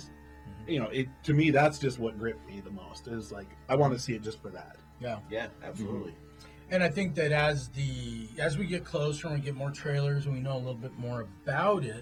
You know, to me, that's just what gripped me the most. Is like, I want to see it just for that. Yeah. Yeah, absolutely. And I think that as we get closer and we get more trailers and we know a little bit more about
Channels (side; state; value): both; identical; correlation 1.00